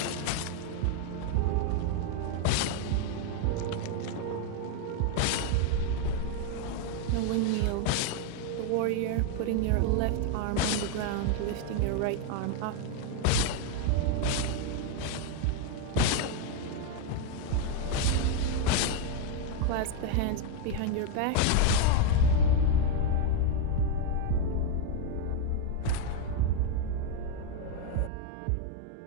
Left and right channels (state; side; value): different; both; correlation 0.01